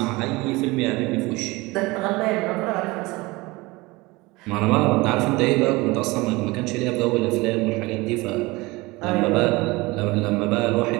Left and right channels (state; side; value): quieter; left; 22.5 dB